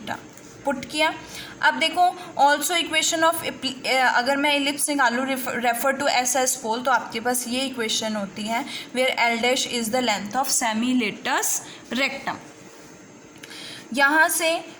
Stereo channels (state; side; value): identical; both; correlation 1.00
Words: Put किया। अब देखो, ऑल्सो इक्वेशन ऑफ अगर मैं एलिप्स निकालूँ रेफर टू SS पोल, तो आपके पास ये इक्वेशन होती है where L dash is the length of semilatus rectum. यहाँ से